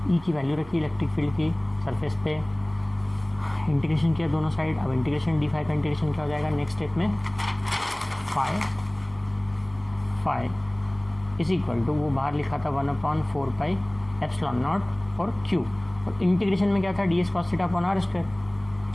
ई की वैल्यू रखी इलेक्ट्रिक फील्ड की सरफेस पे, इंटीग्रेशन किया दोनों साइड। अब इंटीग्रेशन डी फाई का इंटीग्रेशन क्या हो जाएगा नेक्स्ट स्टेप में, फाई इज इक्वल टू, वो बाहर लिखा था 1/4 पाई एप्सिलॉन नॉट और क्यू, और इंटीग्रेशन में क्या था, d S cos theta upon R square,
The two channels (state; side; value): noise; right; rumble, 23 dB below the sound